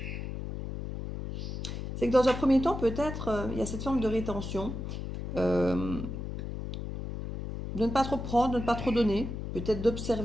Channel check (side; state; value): left; noise; hum, 6 dB below the sound